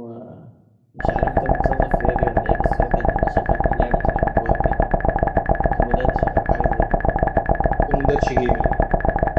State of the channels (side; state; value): both; identical; correlation 1.00